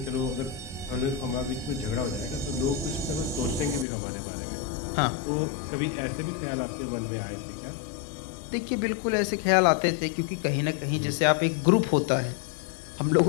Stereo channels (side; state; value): right; drops out; at 3.9 s